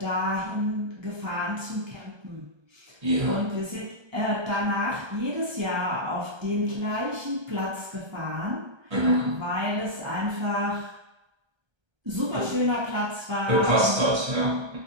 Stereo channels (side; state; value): left; late; 1.3 ms